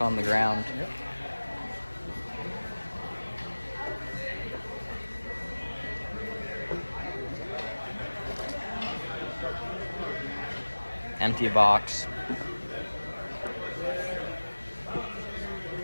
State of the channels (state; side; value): inverted; both; correlation -1.00